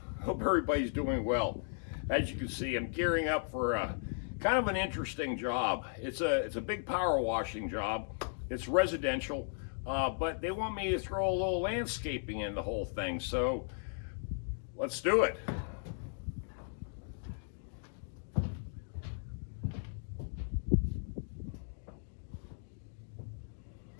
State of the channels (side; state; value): right; silent; digital silence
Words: Hope everybody's doing well. As you can see, I'm gearing up for kind of an interesting job. It's a big power washing job. It's residential, but they want me to throw a little landscaping in the whole thing. So let's do it.